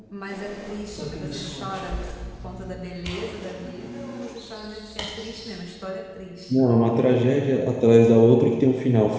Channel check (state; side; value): identical; both; correlation 1.00